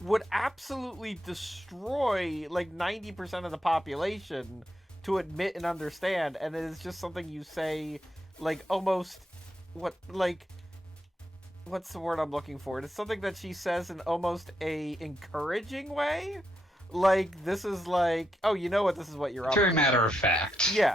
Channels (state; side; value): normal; both; correlation 0.82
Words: absolutely destroy like 90% of the population to admit and understand, and it is just something you say like almost what's the word I'm looking for? It's something that she says in almost a encouraging way. Like, this is like, oh, you know what, this is what you're up Very to. matter of fact.